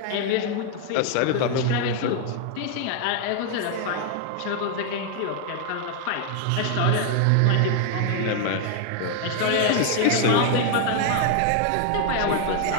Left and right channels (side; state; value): both; different; correlation 0.00